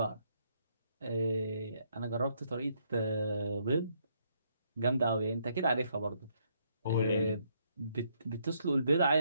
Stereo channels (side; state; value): both; inverted; correlation -0.72